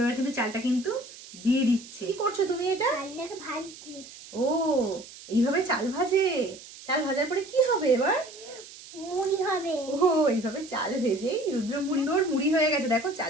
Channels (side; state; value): right; noise; hiss, 17 dB below the sound